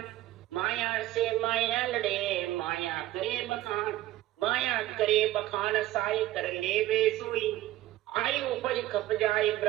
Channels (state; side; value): quieter; left; 15.3 dB